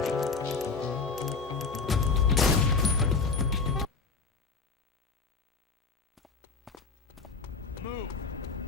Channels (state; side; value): quieter; right; 4.6 dB